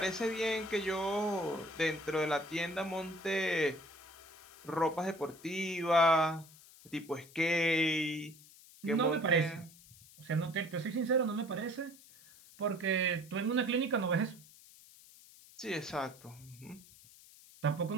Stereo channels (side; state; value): left; noise; hiss, 22 dB below the sound